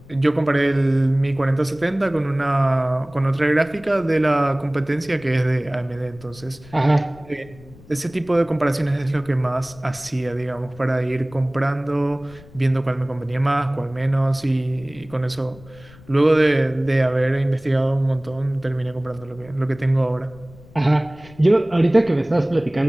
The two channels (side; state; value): left; noise; rumble, 22 dB below the sound